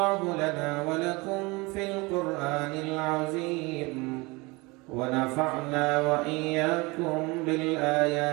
لنا ولكم في القرآن العظيم ونفعنا وإياكم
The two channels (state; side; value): quieter; left; 25.0 dB